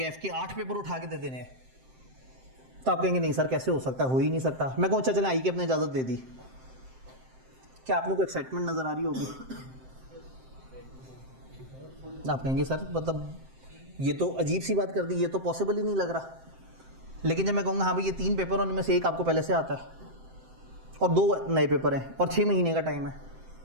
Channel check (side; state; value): left; late; 7.7 ms